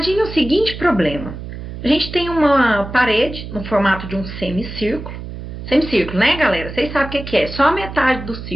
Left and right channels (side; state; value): right; noise; hum, 10 dB below the sound